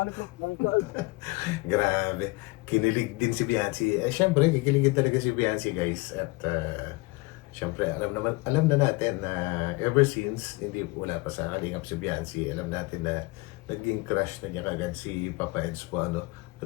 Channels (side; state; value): right; quieter; 23.5 dB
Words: Grabe. Kinilig din si Beyonce. Siyempre, kikiligin talaga si Beyonce guys. At Siyempre, alam na natin na ever since, hindi wala pa sa Kalingap si Biancy, alam natin na naging crush na niya kagad si Papa Eds po, ano.